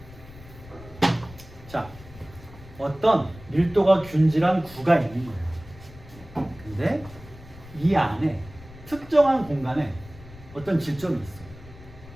자, 어떤 밀도가 균질한 구가 있는 거예요. 근데 이 안에 특정한 공간에 어떤 질점이 있어요.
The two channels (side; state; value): left; noise; rumble, 18 dB below the sound